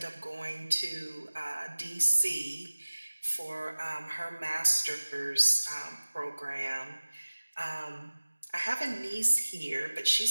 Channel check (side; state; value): both; inverted; correlation -1.00